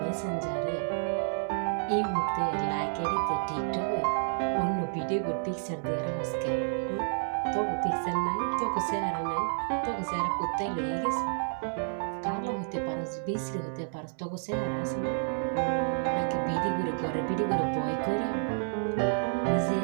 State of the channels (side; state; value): left; silent; 58 dB below the other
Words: মেসেঞ্জারে, এই মুহূর্তে লাইক আইডিতে, টিকটকে অন্য ভিডিও পিকচার দিয়ে আজকে তোকে পিকচার নাই, তোকে চেহারা নাই, তোকে চেহারা কোথায় লয়ে গেছে? কালো হতে পারস, বিশ্রী হতে পারস, তোকে চেহারা আছে না? নাকি বিড়ি করে ঘরে বিড়ি করে বয় করে নিজের